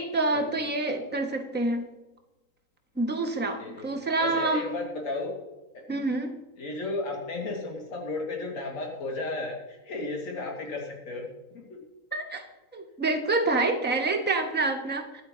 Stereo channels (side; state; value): right; late; 3.9 ms